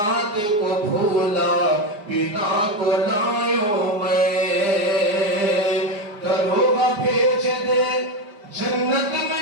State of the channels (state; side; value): late; left; 4.9 ms